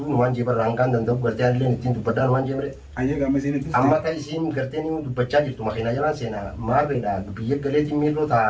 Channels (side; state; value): both; identical; correlation 1.00